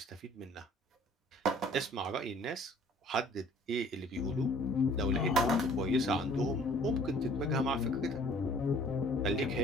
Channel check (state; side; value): normal; both; correlation 0.54